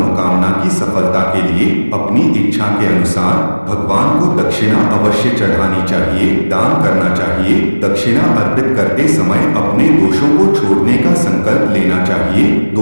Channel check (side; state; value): both; inverted; correlation -1.00